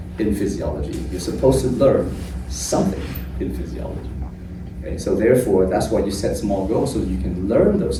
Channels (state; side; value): identical; both; correlation 1.00